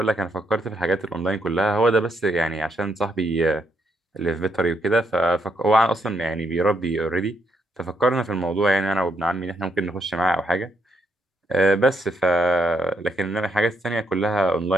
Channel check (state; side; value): normal; both; correlation 0.75